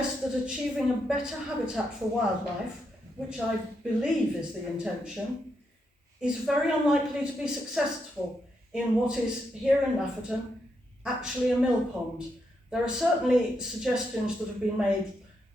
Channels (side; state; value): both; normal; correlation 0.81